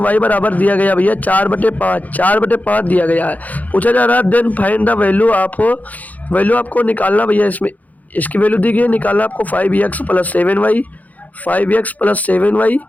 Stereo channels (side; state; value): right; late; 0.078 ms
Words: बराबर दिया गया भैया 4/5 दिया गया है। पूछा जा रहा है देन फाइंड द वैल्यू आपको निकालना भैया, इसमें इसकी वैल्यू दी गई है, निकालना आपको 5x + 7y, 5x + 7y